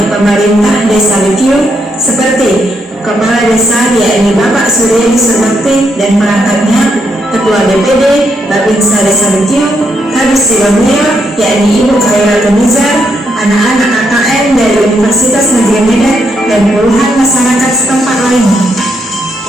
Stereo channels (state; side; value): normal; both; correlation 0.78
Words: pemerintah Desa Bekium seperti Kepala Desa yakni Bapak Suryadi Surbakti dan perangkatnya, Ketua DPD Babinsa Desa Bekium, Kadis Sidemulyo yakni Ibu Khairul Nizar, anak-anak AKM dari Universitas Negeri Medan dan puluhan masyarakat setempat lainnya.